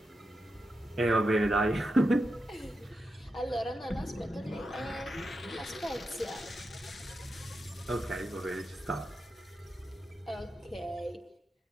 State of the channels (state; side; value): normal; both; correlation 0.88